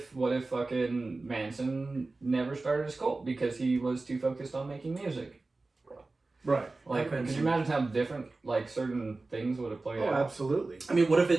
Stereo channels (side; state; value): left; quieter; 3.4 dB